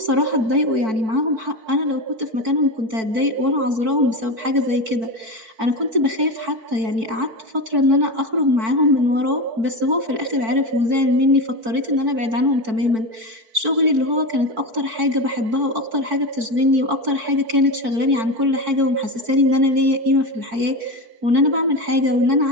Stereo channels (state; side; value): late; left; 4.5 ms